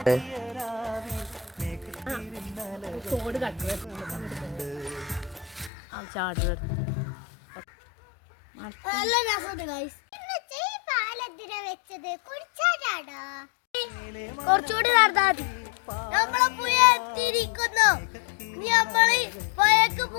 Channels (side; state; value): right; drops out; at 5.7 s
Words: കുറച്ചുകൂടി നടന്നാൽ നമ്മളെ പുഴ എത്തിയിരിക്കുന്നു. നമ്മള് പുഴക്ക്